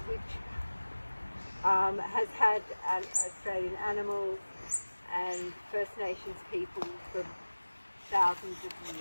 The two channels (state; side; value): inverted; both; correlation -1.00